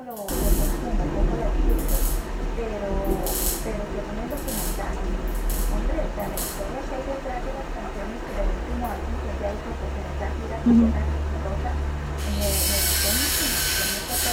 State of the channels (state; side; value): identical; both; correlation 1.00